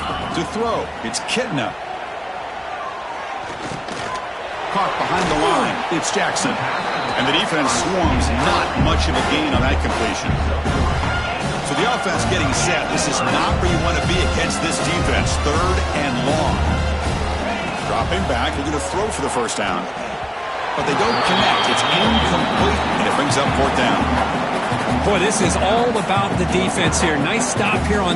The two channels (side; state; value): both; identical; correlation 1.00